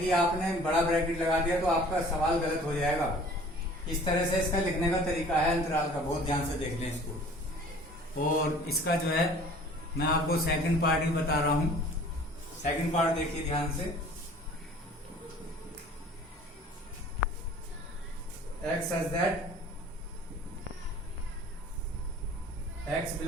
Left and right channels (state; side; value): normal; both; correlation 0.48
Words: आपने बड़ा ब्रैकेट लगा दिया तो आपका सवाल गलत हो जाएगा। इस तरह से इसका लिखने का तरीका है अंतराल का, बहुत ध्यान से देख लें इसको। और इसका जो है मैं आपको सेकंड पार्ट ही बता रहा हूं। सेकंड पार्ट देखिए ध्यान से। x such that x